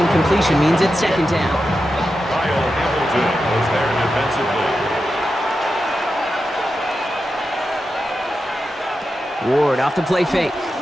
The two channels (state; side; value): normal; both; correlation 0.90